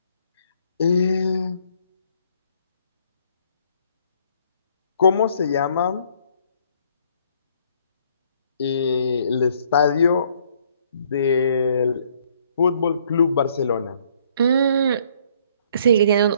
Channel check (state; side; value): inverted; both; correlation -0.64